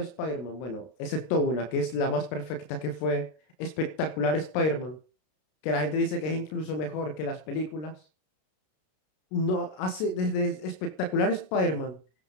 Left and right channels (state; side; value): late; right; 32 ms